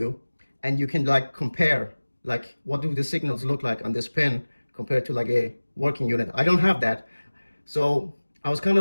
and you can like compare, like what do the signals look like on this pin compared to like a working unit. I don't have that. So I was kind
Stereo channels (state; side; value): inverted; both; correlation -1.00